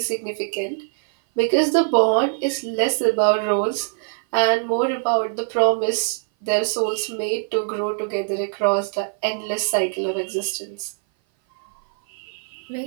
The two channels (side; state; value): left; silent; 58 dB below the other